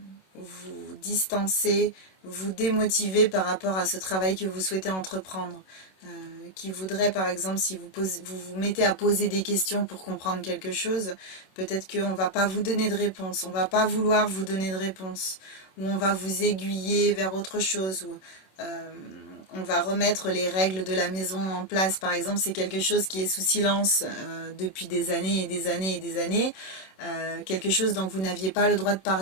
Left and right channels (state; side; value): late; right; 26 ms